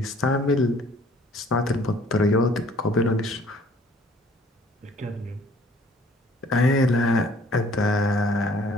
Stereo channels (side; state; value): both; normal; correlation 0.56